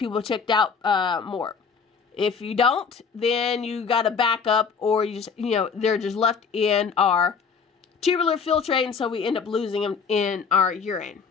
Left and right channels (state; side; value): quieter; right; 5.8 dB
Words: checked out more. If you don't, then you got to back up, or you just, they're just left in our tubular filtrate, and so we end up losing them in our urine.